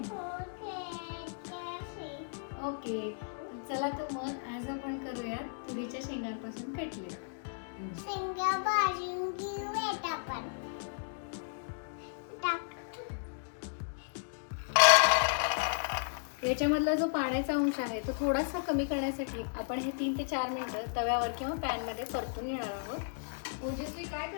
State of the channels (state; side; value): silent; right; digital silence